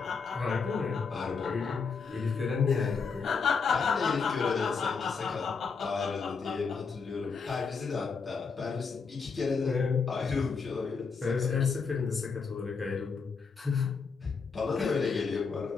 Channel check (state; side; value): quieter; right; 5.2 dB